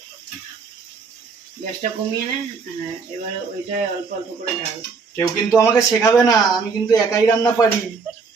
গ্যাসটা কমিয়ে নে, এবার ওইটা অল্প অল্প করে ঢাল। কেউ কিন্তু আমাকে শেখাবে না, আমি কিন্তু একাই রান্না পারি।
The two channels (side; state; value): left; quieter; 5.0 dB